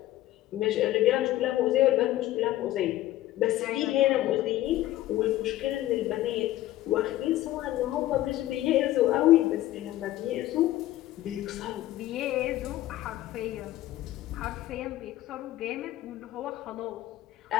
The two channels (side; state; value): right; quieter; 15.0 dB